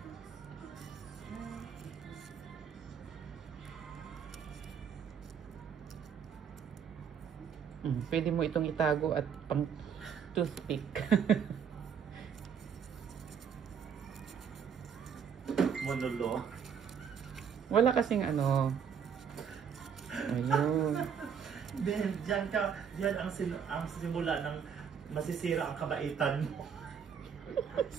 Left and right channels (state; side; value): quieter; left; 7.3 dB